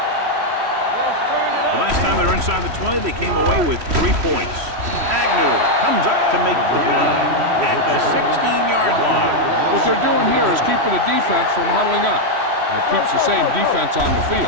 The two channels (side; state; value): left; late; 3.1 ms